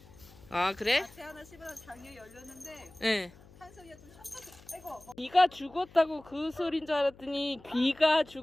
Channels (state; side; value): noise; left; hum, 23 dB below the sound